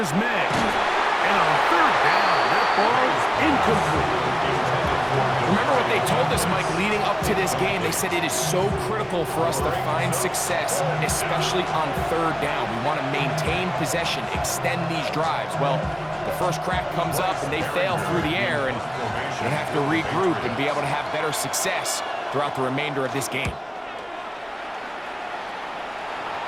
May. And on 3rd down, that ball is incomplete. Remember what they told us, Mike, leading up to this game. They said it is so critical for us to find success, especially on 3rd down. We want to maintain possession, extend these drives. Well, the first crack comes up and they fail through the air, and they have to regroup and be able to have better success throughout the remainder of this game.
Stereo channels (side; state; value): both; identical; correlation 1.00